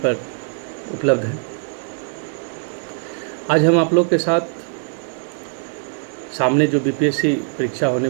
उपलब्ध है। आज हम आप लोग के साथ सामने जो बीपीएससी परीक्षा होने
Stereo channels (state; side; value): silent; left; 65 dB below the other